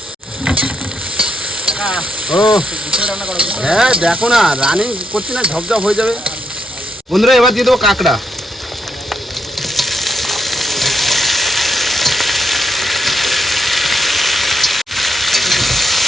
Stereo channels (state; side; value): normal; both; correlation 0.79